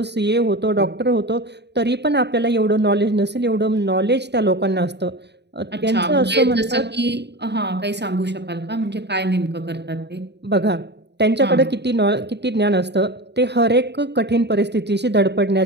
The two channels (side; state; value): left; late; 0.50 ms